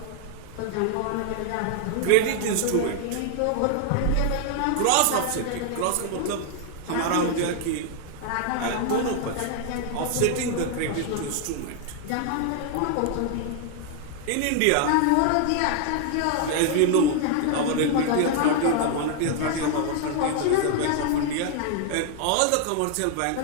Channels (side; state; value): both; different; correlation 0.00